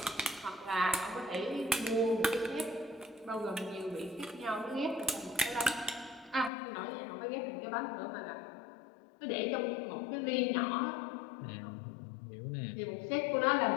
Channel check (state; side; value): drops out; right; at 6.5 s